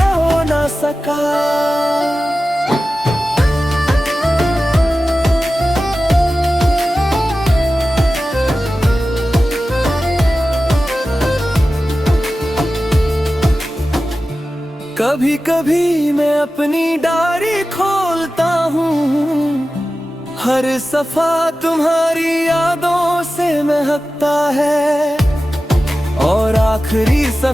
हो ना सका। कभी कभी मैं अपनी डायरी खोलता हूँ, हर सफा तुम्हारी यादों से महकता है। और आखिरी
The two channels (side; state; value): both; normal; correlation 0.94